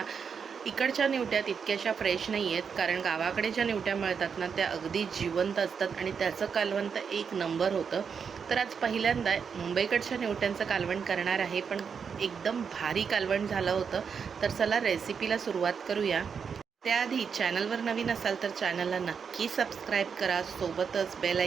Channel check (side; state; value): left; quieter; 6.4 dB